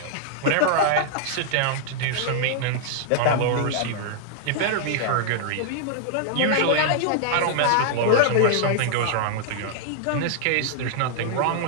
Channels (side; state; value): both; different; correlation -0.01